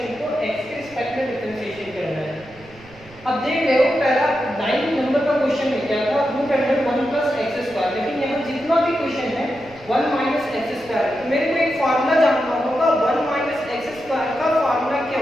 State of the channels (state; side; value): noise; right; rumble, 23 dB below the sound